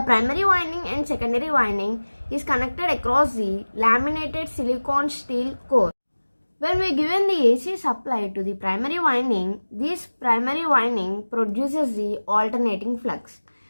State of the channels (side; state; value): both; inverted; correlation -1.00